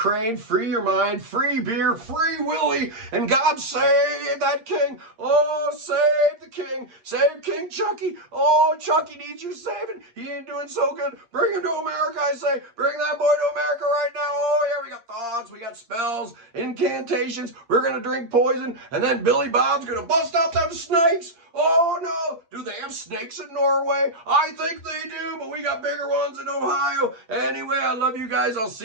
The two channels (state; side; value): late; left; 8.6 ms